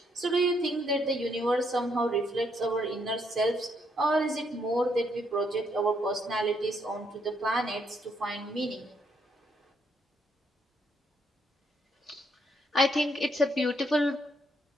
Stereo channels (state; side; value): normal; both; correlation 0.73